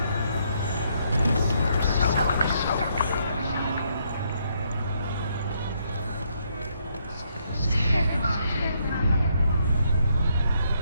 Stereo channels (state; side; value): inverted; both; correlation -0.73